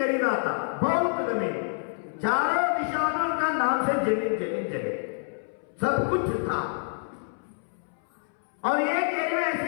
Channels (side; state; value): right; silent; 60 dB below the other